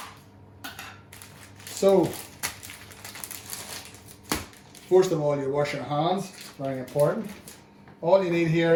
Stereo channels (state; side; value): identical; both; correlation 1.00